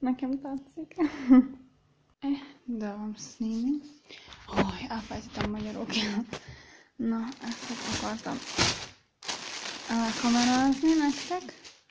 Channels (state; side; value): identical; both; correlation 1.00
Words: tetszik. De van színi. Elfelejtettem magyarul. Na, ezt akartam elkamerázni nektek.